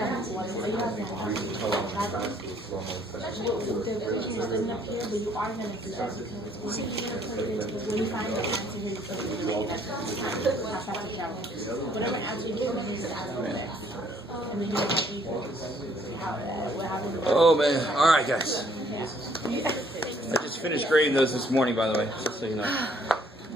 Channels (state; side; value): normal; both; correlation 0.63